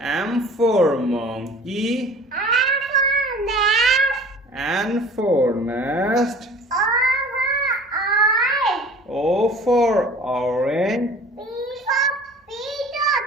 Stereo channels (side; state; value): both; normal; correlation 0.45